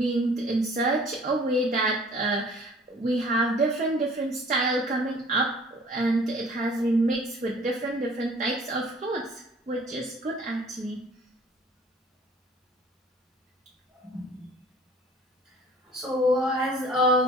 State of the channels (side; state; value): both; normal; correlation 0.51